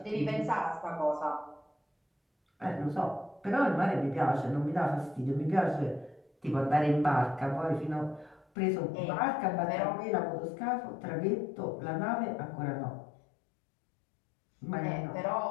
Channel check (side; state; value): right; drops out; at 8.5 s